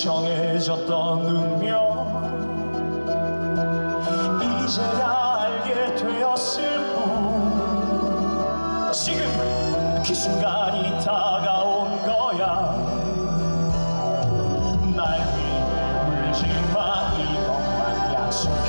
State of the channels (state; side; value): inverted; both; correlation -1.00